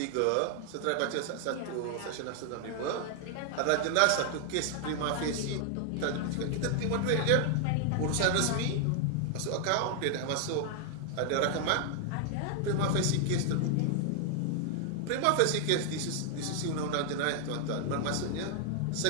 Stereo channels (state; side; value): different; both; correlation 0.00